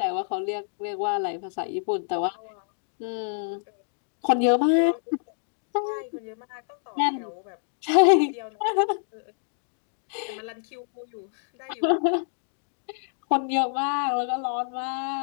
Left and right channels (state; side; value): silent; right; digital silence